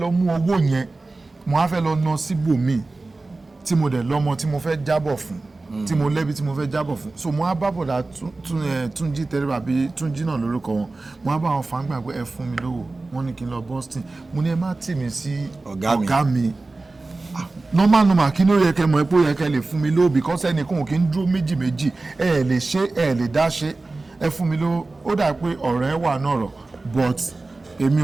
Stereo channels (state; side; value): quieter; left; 3.3 dB